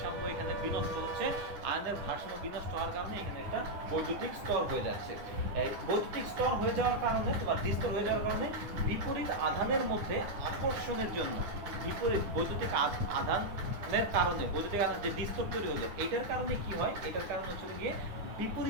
এখানে বিনষ্ট হচ্ছে, আয়নের ভারসাম্য বিনষ্ট হওয়ার কারণে এখানে একটা বৈদ্যুতিক স্তর হয়ে যাচ্ছে। এই বৈদ্যুতিক স্তর হয়ে যাওয়ার কারণে তোমার দ্বিস্তর হয়ে যাওয়ার কারণে বিপরীত আধানের মধ্যে আকর্ষণের জন্য, বিপরীত বৈদ্যুতিক আধানের কারণে, বৈদ্যুতিক আধান যে দ্বিস্তর তৈরি হলো এটার কারণে কি হয়, এটার কারণে হচ্ছে গিয়ে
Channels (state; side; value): late; left; 9.7 ms